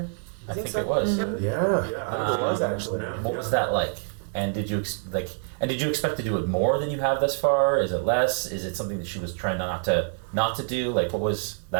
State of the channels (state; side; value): silent; left; digital silence